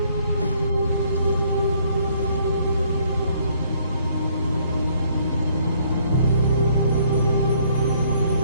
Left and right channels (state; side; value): inverted; both; correlation -0.64